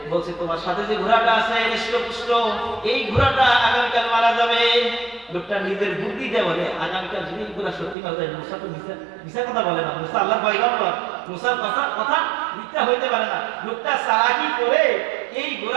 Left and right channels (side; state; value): left; drops out; at 8.0 s